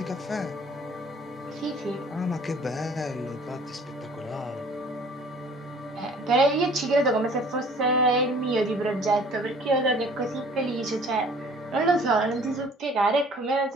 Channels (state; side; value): normal; both; correlation 0.52